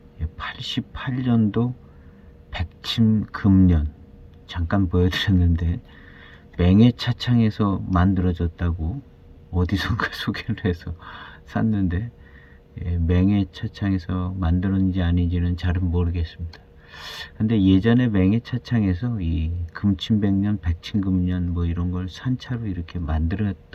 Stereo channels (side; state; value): both; identical; correlation 1.00